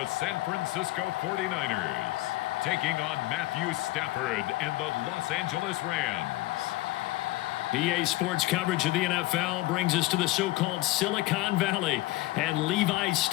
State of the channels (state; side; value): quieter; right; 18.7 dB